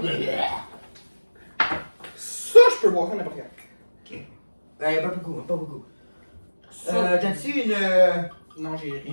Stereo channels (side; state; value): both; inverted; correlation -1.00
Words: Ça, je peux boire ça n'importe quand. Ok. Pas beaucoup. Ça. T'as-tu une. Non, j'ai rien.